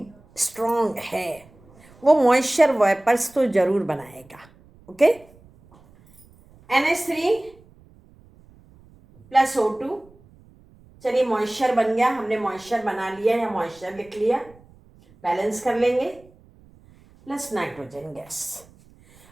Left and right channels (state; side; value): noise; right; rumble, 27 dB below the sound